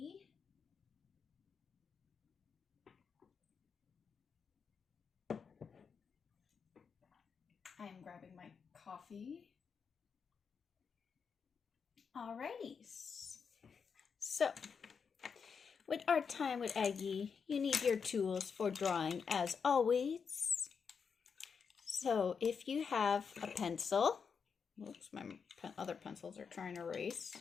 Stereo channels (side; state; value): right; quieter; 6.1 dB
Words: I am grabbing my coffee. Alrighty. So, with Art Time with Aggie, you need your tools for drawing as always. So, if you have a pencil, oops, my other pencils are trying to erase,